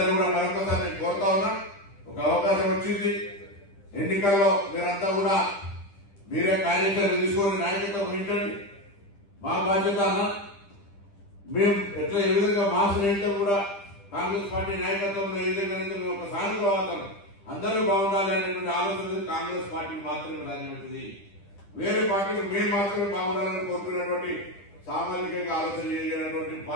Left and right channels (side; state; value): right; late; 10 ms